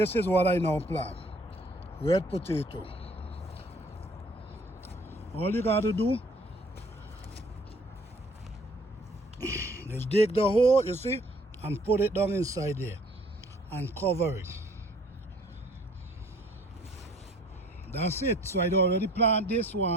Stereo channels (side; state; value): both; normal; correlation 0.56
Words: is what I now plant. Red potato. All you got to do is dig the hole, you see, and put it down inside there and cover it. That's it. So I already plant this